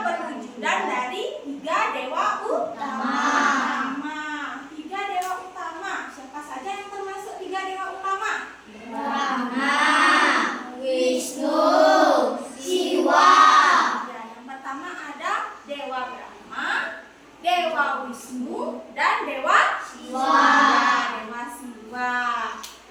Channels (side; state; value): both; identical; correlation 1.00